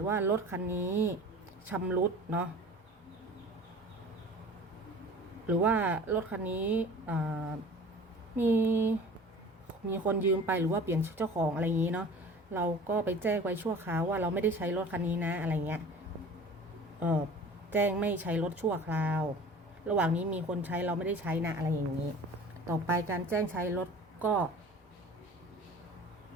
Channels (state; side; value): normal; both; correlation 0.42